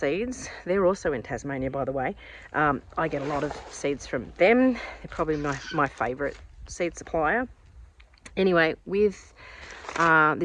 They're also in Tasmania, by the way. I get a lot of seeds from them. They're probably my favourite seed supplier. Anyway, with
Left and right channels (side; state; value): both; identical; correlation 1.00